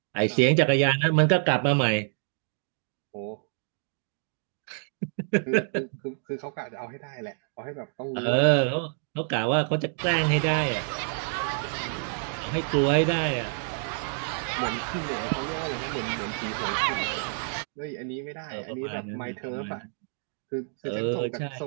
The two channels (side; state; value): left; silent; 59 dB below the other